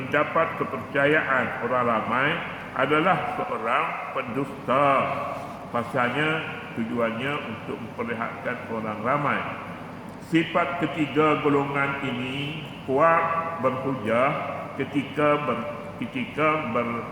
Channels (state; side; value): identical; both; correlation 1.00